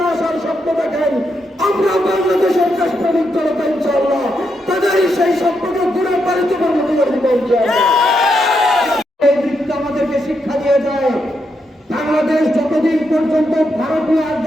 আসার স্বপ্ন দেখেন, আমরা বাংলাদেশের দেশপ্রেমিক জনতা ইনশাআল্লাহ তাদের সেই স্বপ্নকে ঘুরে পালিত পরিণত করে দিব ইনশাআল্লাহ। এই বৃত্ত আমাদেরকে শিক্ষা দিয়ে যায়, বাংলাদেশ যতদিন পর্যন্ত ভারতীয়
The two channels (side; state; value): both; normal; correlation 0.81